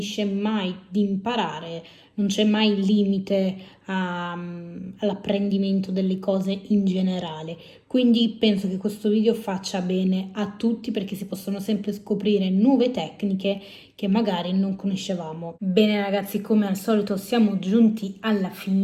mai di imparare, non c'è mai limite all'apprendimento delle cose in generale. Quindi penso che questo video faccia bene a tutti perché si possono sempre scoprire nuove tecniche che magari non conoscevamo. Bene ragazzi, come al solito siamo giunti alla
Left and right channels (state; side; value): identical; both; correlation 1.00